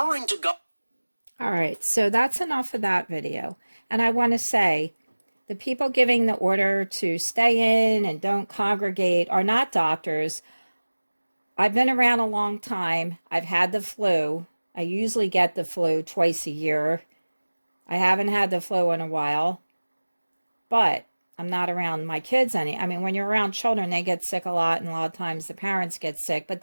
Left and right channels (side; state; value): both; inverted; correlation -1.00